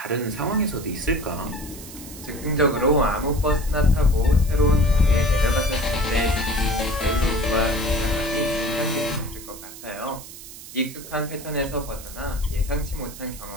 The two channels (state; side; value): noise; right; hiss, 15 dB below the sound